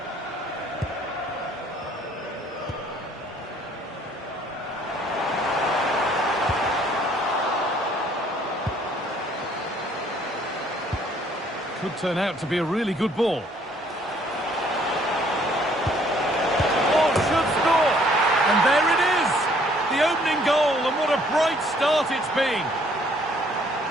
Could turn out to be a really good ball. Oh, should score! And there it is! The opening goal, and what a bright start it's been!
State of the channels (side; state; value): both; normal; correlation 0.61